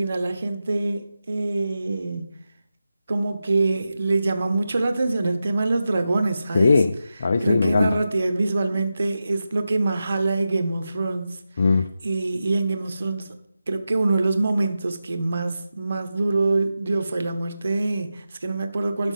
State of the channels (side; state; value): both; inverted; correlation -0.90